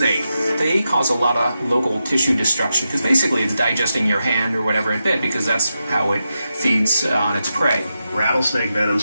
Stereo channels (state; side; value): inverted; both; correlation -0.88